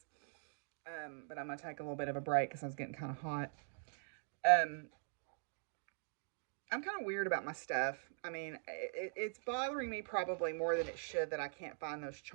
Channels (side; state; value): left; silent; digital silence